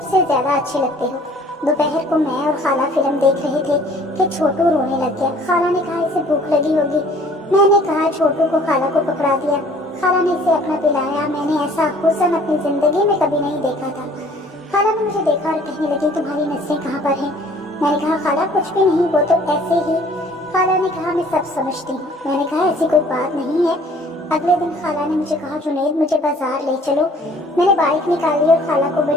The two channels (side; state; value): both; normal; correlation 0.54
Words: ज्यादा अच्छे लगते हो। दोपहर को मैं और खाला फिल्म देख रहे थे कि छोटू रोने लग गया। खाला ने कहा, इसे भूख लगी होगी। मैंने कहा, छोटू को खाला को पकड़ा दिया। खाला ने इसे अपना पिलाया। मैंने ऐसा हुस्न अपनी जिंदगी में कभी नहीं देखा था। खाला ने मुझे देखा और कहने लगी, तुम्हारी नसें कहाँ पर हैं? मैंने कहा, खाला कुछ भी नहीं, वो तो ऐसे ही। खाला ने कहा, मैं सब समझती हूँ। मैंने कहा, ऐसी कोई बात नहीं है। अगले दिन खाला ने मुझे कहा, जुनैद मुझे बाजार ले चलो। मैंने बाइक निकाली और खाला को